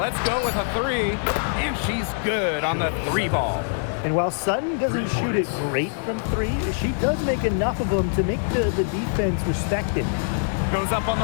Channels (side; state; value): right; silent; digital silence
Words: go with a 3, and she's good on the 3-ball. And while Sutton doesn't shoot it great from 3, she does make enough of them to make the defense respect it. Goes up on